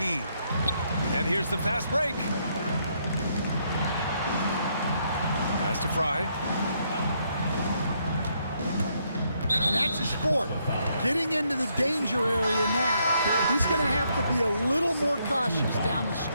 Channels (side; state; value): both; inverted; correlation -0.74